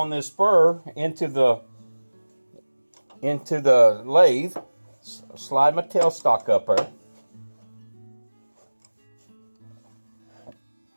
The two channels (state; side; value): inverted; both; correlation -1.00